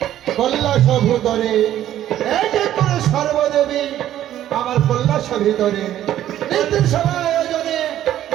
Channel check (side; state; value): left; quieter; 12.2 dB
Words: কৈলাস ভূতরে এক এক করে সর্বদেবী আমার কৈলাস ভিতরে নিত্য সভা আয়োজনে